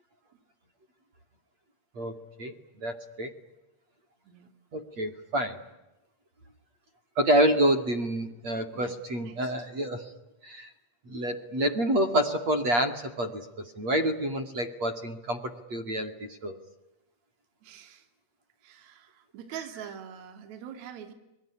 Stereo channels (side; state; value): left; late; 8.5 ms